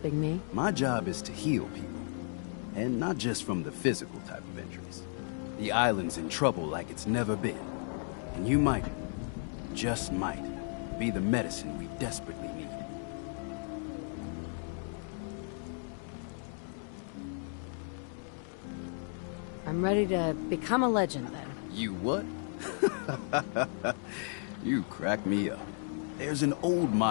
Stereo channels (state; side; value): silent; right; 55 dB below the other